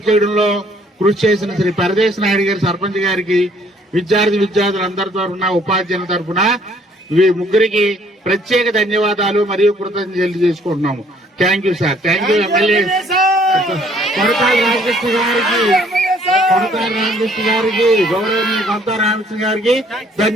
చేయడంలో కృషి చేసిన శ్రీ పరదేశ్ నాయుడు గారి సర్పంచ్ గారికి, విద్యార్థులందరి తరఫున ఉపాధ్యాయుల తరఫున ముగ్గురికి ప్రత్యేక ధన్యవాదాలు మరియు కృతజ్ఞతలు తెలియజేసుకుంటున్నాము. Thank you sir. Thank you MLA Konathala Ramakrishna గారికి, గౌరవనీయ కొనతాల రామకృష్ణ గారికి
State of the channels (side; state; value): both; normal; correlation 0.62